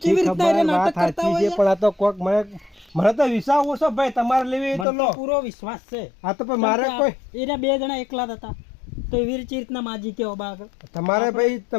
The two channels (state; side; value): drops out; right; at 4.9 s